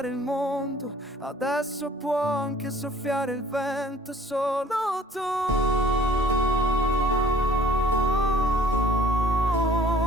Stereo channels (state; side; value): normal; both; correlation 0.51